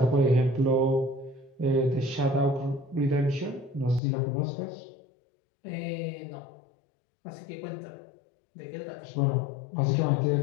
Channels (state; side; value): drops out; right; at 4.0 s